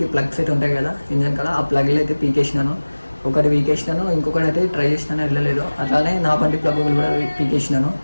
ప్లగ్ సెట్ ఉంటాయి కదా ఇంజన్ కాడ, ఆ ప్లగ్లు అయితే పీకేసినాను. ఒకటి పీకేసినాను, ఇంకొకటి అయితే ట్రై చేసినాను, వెళ్ళలేదు. అట్లానే నా బండి ప్లగ్ కూడా పీకేసినాను.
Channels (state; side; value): inverted; both; correlation -1.00